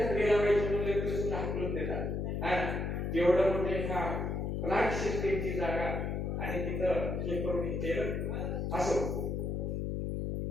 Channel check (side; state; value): left; noise; hum, 1 dB below the sound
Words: लावायची म्हणलं तर सुद्धा हाकलून देतात. एवढं मोठे ह्या प्लांट सिस्टीमची जागा आणि तिथं हे करून केलं असो.